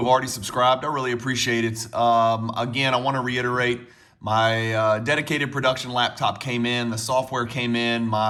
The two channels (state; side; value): identical; both; correlation 1.00